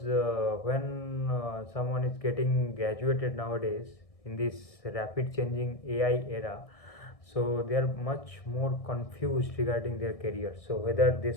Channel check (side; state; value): right; late; 1.6 ms